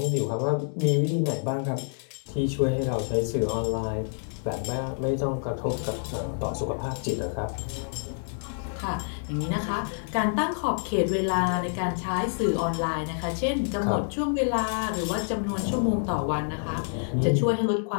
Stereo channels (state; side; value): silent; right; digital silence